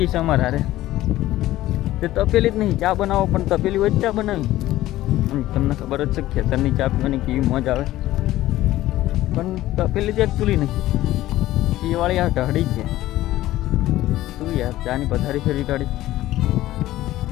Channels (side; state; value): right; quieter; 15.4 dB